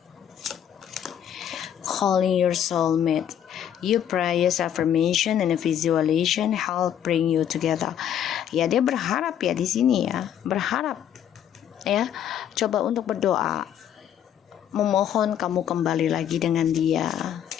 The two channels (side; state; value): right; quieter; 9.8 dB